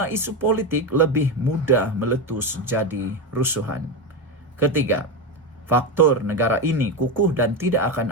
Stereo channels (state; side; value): normal; both; correlation 0.14